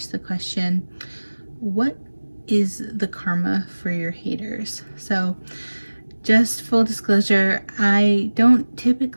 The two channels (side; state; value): both; inverted; correlation -1.00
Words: the question, what is the karma for your haters? So just full disclosure, I don't